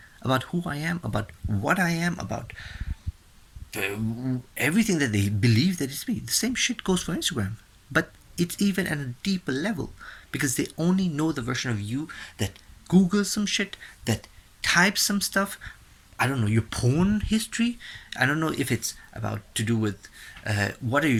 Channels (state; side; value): identical; both; correlation 1.00